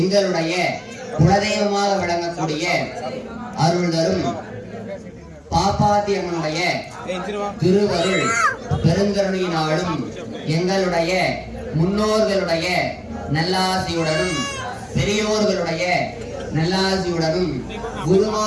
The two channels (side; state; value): both; identical; correlation 1.00